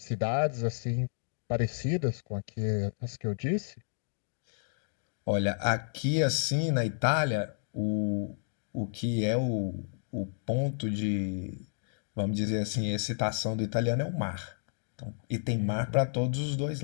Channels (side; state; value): right; silent; digital silence